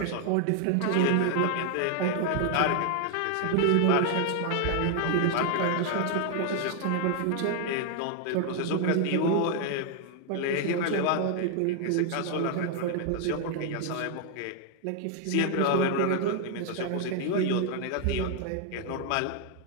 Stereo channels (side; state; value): both; different; correlation 0.00